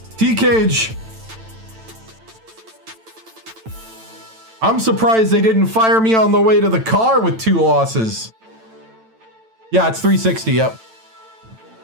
T-Cage. I'm surprised they didn't fire me on the way to the car with 2 losses. Yeah, it's 360, yep.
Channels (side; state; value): left; late; 9.0 ms